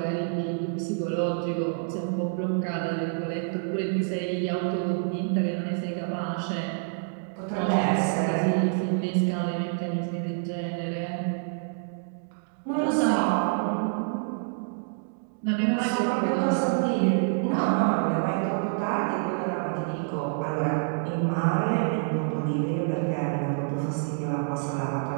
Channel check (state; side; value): silent; left; digital silence